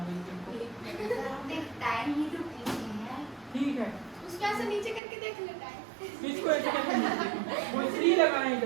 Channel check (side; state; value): left; drops out; at 5.0 s